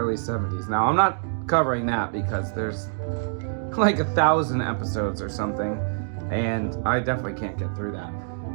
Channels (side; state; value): left; silent; digital silence